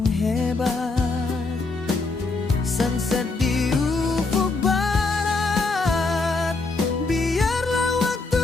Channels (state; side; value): quieter; right; 3.7 dB